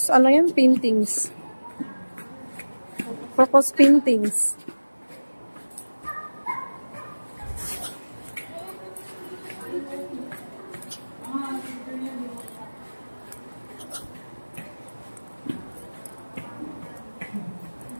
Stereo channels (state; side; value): inverted; both; correlation -1.00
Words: ano yan? Paintings. Focus paintings.